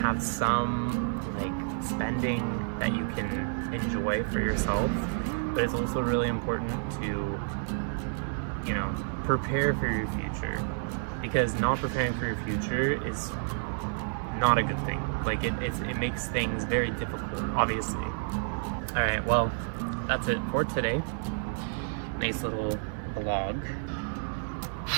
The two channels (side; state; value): left; silent; 58 dB below the other